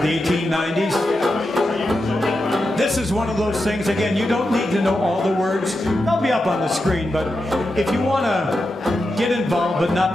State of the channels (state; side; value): normal; both; correlation 0.88